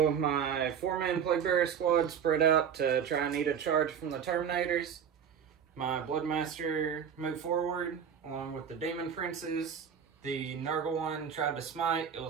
my 4-man Plague Bearer squad spread out to try and need a charge from the Terminators. My Bloodmaster moved forward along with the Demon Princes. The Nurgle one tried to smite. It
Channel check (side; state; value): left; quieter; 7.8 dB